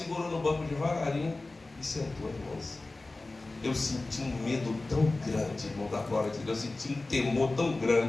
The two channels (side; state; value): right; quieter; 3.2 dB